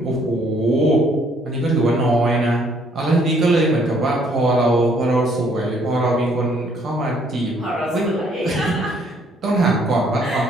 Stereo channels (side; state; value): both; normal; correlation 0.65